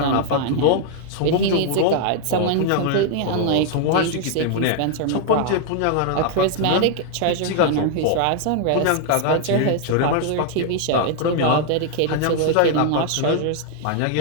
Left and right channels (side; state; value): both; different; correlation 0.00